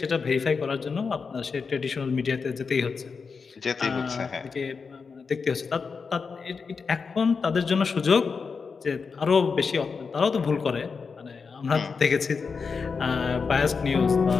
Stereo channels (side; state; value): right; quieter; 5.2 dB